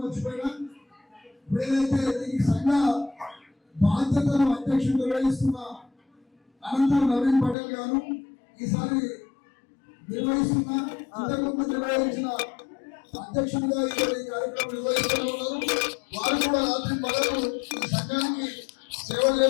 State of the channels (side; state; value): right; drops out; at 7.6 s